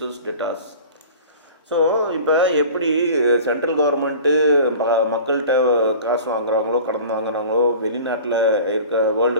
debtors. So இப்போ எப்படி central government மக்கள்கிட்ட காசு வாங்குறாங்களோ, கடன் வாங்குறாங்களோ, வெளிநாட்டில் இருக்க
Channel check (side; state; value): both; inverted; correlation -0.41